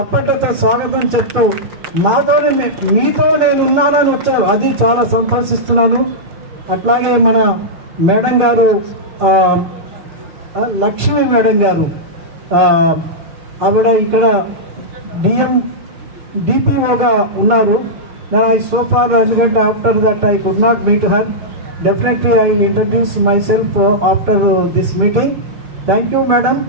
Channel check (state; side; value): late; left; 6.5 ms